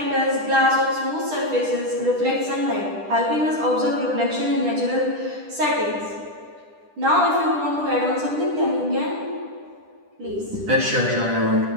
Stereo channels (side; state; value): left; late; 10 ms